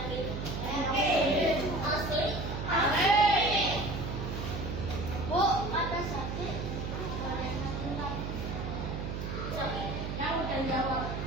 Yakin. Asli? Asli. Bu, ada sakit? Sakit? Yang udah jawab.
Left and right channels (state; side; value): noise; right; hum, 4 dB below the sound